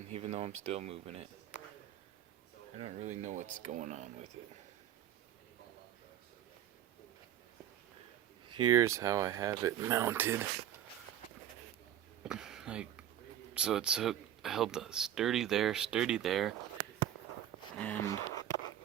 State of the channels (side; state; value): left; quieter; 11.0 dB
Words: even though I'm still moving it. I don't really know what's going on with it. Here's how I have it mounted. So it's held sturdy there, and